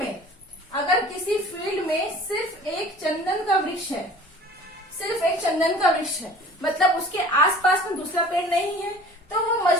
फील्ड में सिर्फ एक चंदन का वृक्ष है, सिर्फ एक चंदन का वृक्ष है, मतलब उसके आसपास में दूसरा पेड़ नहीं है, तो वो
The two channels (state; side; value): normal; both; correlation 0.45